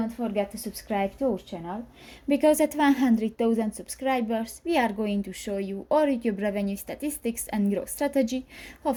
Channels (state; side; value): identical; both; correlation 1.00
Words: forget to subscribe to our channel, because at 100,000 subscribers we are going to show you our YouTube revenue statistics and growth strategy, how